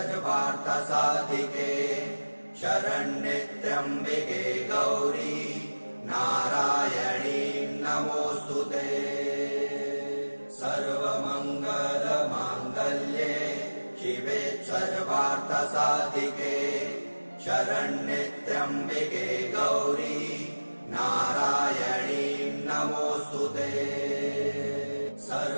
शरण्ये त्र्यम्बिके गौरी नारायणी नमोऽस्तुते। सर्वमङ्गलमाङ्गल्ये शिवे सर्वार्थसाधिके शरण्ये त्र्यम्बिके गौरी नारायणी नमोऽस्तुते।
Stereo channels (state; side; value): inverted; both; correlation -1.00